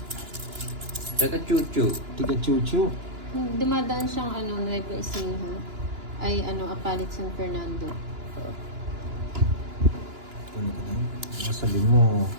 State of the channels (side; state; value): left; late; 2.9 ms